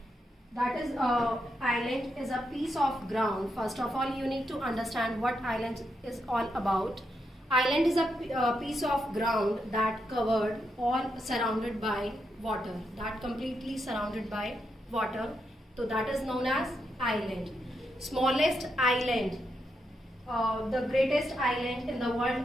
That is, island is a piece of ground. First of all, you need to understand what island is all about. Island is a piece of ground that covered or surrounded by water. That completely surrounded by water. So that is known as island. Smallest island, the greatest island in the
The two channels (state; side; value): normal; both; correlation 0.82